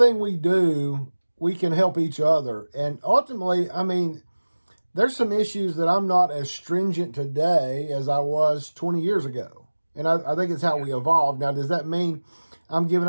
we do, we can help each other, and ultimately, I mean, there's some issues that I'm not as stringent today as I was 20 years ago. And I think it's how we evolved. Now, does that mean I'm giving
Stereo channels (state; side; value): inverted; both; correlation -1.00